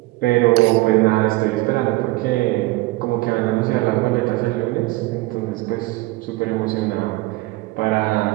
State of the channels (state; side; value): quieter; left; 20.6 dB